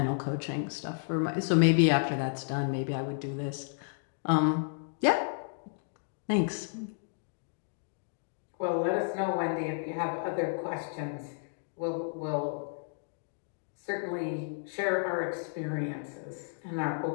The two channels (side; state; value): right; silent; digital silence